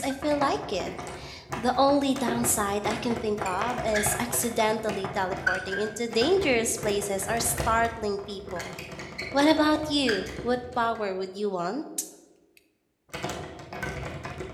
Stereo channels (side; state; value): both; identical; correlation 1.00